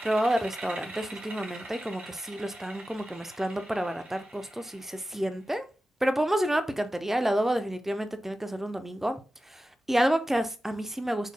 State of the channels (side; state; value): both; normal; correlation 0.94